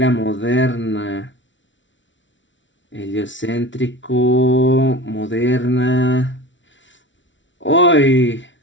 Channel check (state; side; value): late; right; 0.55 ms